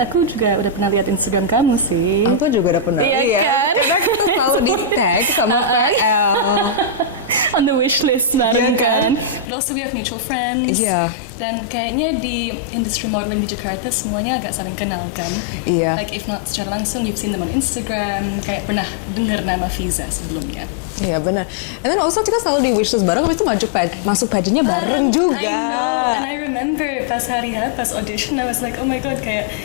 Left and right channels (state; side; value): drops out; right; at 9.5 s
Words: juga udah pernah lihat Instagram kamu sih. Aku juga udah pernah Iya lihat. kan? Karena kita selalu di tag sama PL. On the wish list Iya bareng kan? kan. But also we have mutual friends. Iya. Dan kayaknya di industri modeling di Jakarta semuanya agak saling kenal kan. Iya. Like if not secara langsung, you've seen them on Instagram. Kayak pernah dengar nama Fiza sebelumnya. Iya benar. And then also kita selalu di wishlist bareng, habis itu masuk pageantnya bareng juga. I know, and I remember pas hari H, pas audition, I was like, oh my god, kayak